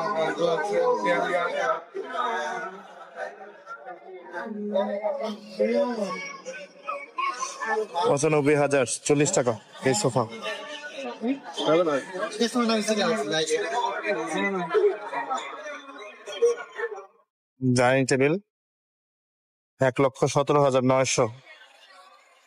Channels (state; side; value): identical; both; correlation 1.00